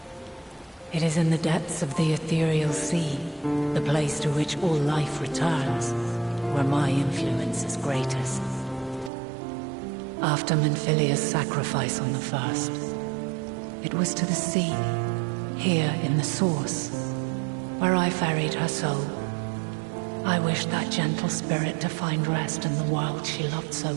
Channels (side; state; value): left; drops out; at 9.1 s